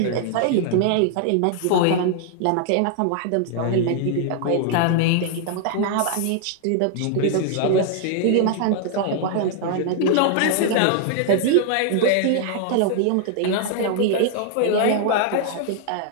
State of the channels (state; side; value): different; both; correlation 0.00